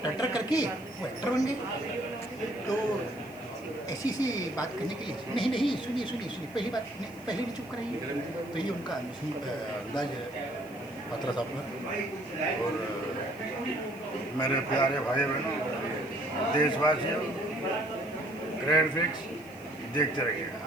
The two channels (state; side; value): noise; left; hiss, 23 dB below the sound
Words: टर करके वो एक्टर बन गए। तो ऐसी सी बात करने के लिए नहीं, सुनिए पहली बात पहले भी चुप कराइए। तो ये उनका अंदाज है पात्रा साहब का। और मेरे प्यारे भाई बहनों, देशवासियों, ग्रेट फिक्स देखते रहिएगा।